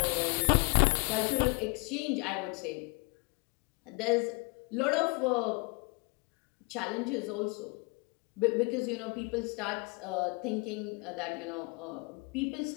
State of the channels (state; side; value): quieter; right; 29.6 dB